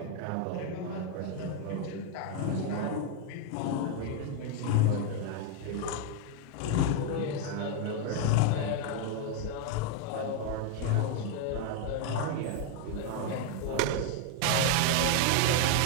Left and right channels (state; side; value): different; both; correlation 0.01